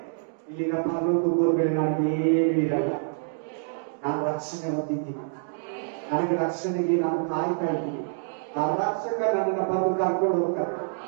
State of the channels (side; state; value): left; silent; digital silence